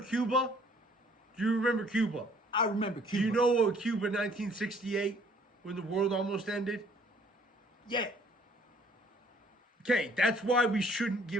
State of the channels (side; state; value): both; normal; correlation 0.60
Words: Do you remember Cuba? I remember Do Cuba. you know what Cuba 1968 when the world almost ended? Yeah. Okay, that's why we shouldn't